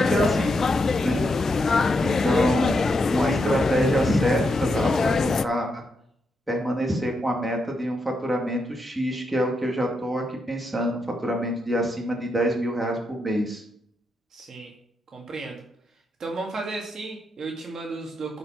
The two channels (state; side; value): normal; both; correlation 0.82